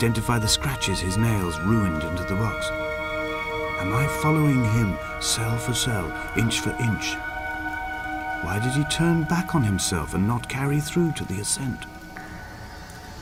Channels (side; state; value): both; identical; correlation 1.00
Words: the scratches his nails ruined into the rocks? Am I following him cell for cell, inch for inch? Why did he turn back on himself and not carry through to the ascent?